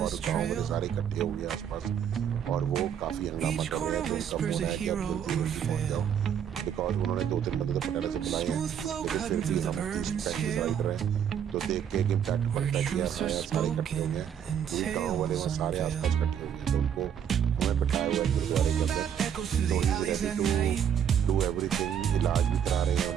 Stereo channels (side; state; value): left; quieter; 8.6 dB